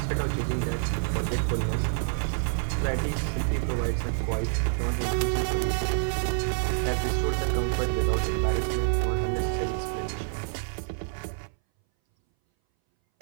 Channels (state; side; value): silent; left; 60 dB below the other